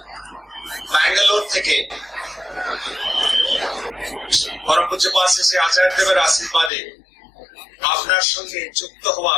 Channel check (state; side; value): drops out; right; at 6.7 s